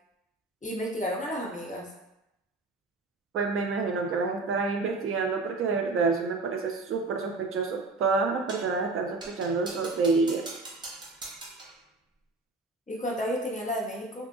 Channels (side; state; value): left; quieter; 3.3 dB